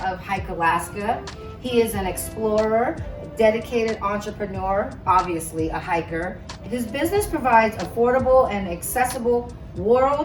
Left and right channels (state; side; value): identical; both; correlation 1.00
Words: of Hike Alaska. He is an explorer, a dedicated entrepreneur, obviously a hiker. His business provides affordable and accessible